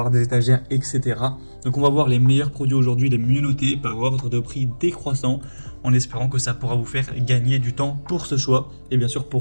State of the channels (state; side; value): inverted; both; correlation -1.00